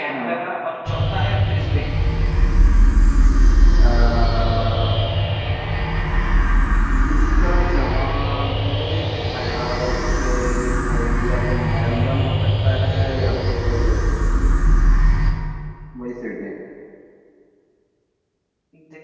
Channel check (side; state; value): both; identical; correlation 1.00